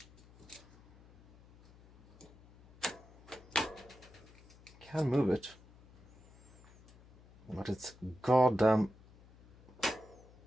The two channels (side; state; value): left; noise; hum, 24 dB below the sound